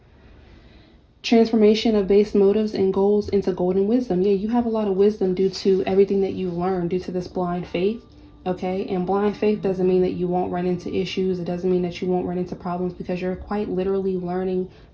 Transformation of base motives and goals into golden wisdom. Yeah, you have a lot of wisdom due to everything that you've learned due to this blind faith. Okay, and blind faith doesn't mean that you won't run into issues. It doesn't mean that you won't run into problems, because you're quite literally learning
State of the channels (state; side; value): identical; both; correlation 1.00